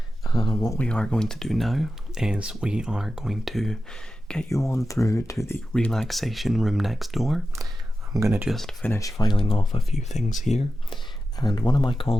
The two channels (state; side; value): normal; both; correlation 0.92